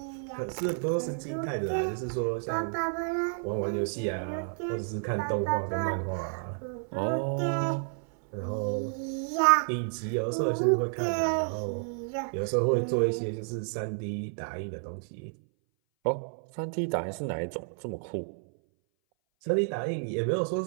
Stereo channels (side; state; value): left; silent; 58 dB below the other